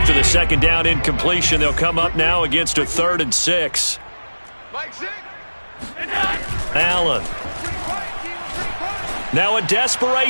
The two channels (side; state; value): both; inverted; correlation -1.00